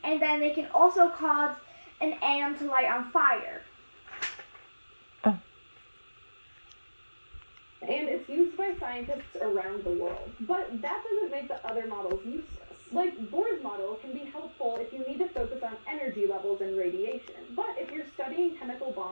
and then they can also cause an atom to light on fire. Oh. And it's used by scientists around the world. But that doesn't make the other models useless. Like, Bohr's model can be helpful if you need to focus on energy levels and radiation. But if you're studying chemical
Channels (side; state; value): both; inverted; correlation -1.00